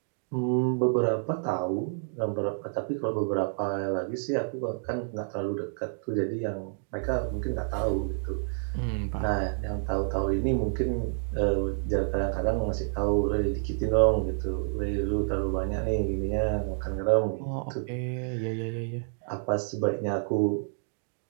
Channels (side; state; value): left; silent; digital silence